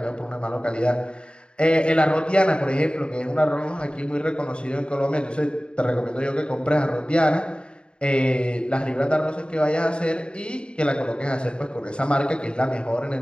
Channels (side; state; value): right; late; 0.053 ms